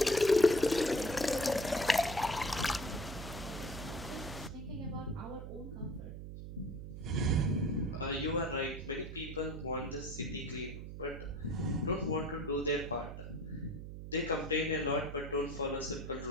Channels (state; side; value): noise; right; hum, 9 dB below the sound